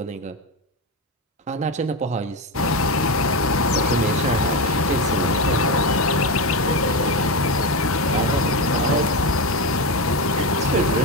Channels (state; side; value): normal; both; correlation 0.14